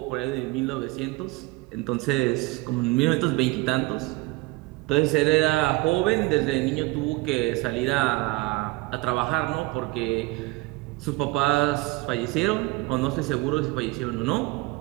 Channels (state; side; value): quieter; left; 22.3 dB